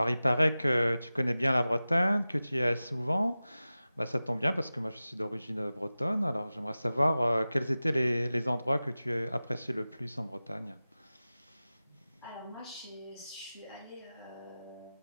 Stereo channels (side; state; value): both; inverted; correlation -0.96